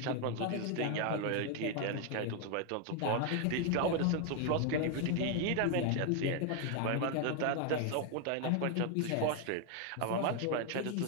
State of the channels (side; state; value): both; different; correlation 0.01